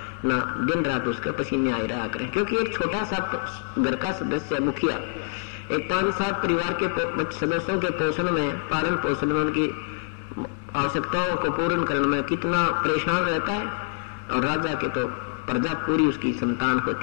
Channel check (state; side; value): silent; right; 61 dB below the other